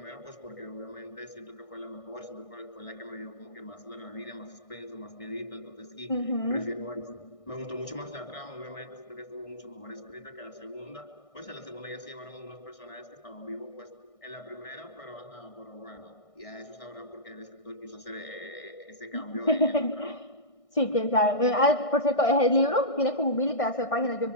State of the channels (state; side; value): late; right; 1.6 ms